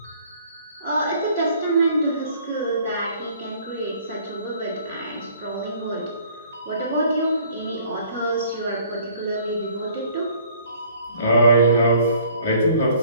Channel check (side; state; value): both; inverted; correlation -0.56